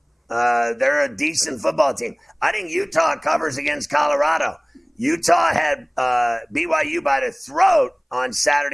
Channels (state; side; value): identical; both; correlation 1.00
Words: They're a decent football team. I think Utah covers against Colorado. Utah had BYU by the throat on